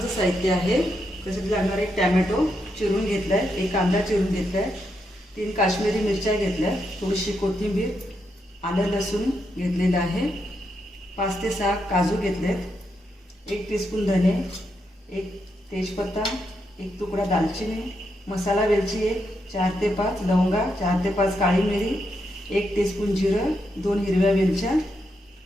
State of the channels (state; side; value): normal; both; correlation 0.82